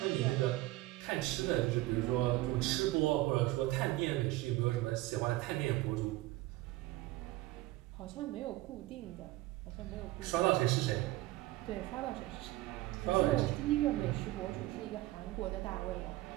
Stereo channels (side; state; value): left; quieter; 17.8 dB